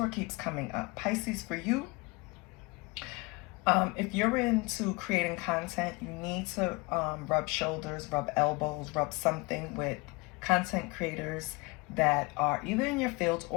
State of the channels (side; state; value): right; quieter; 25.8 dB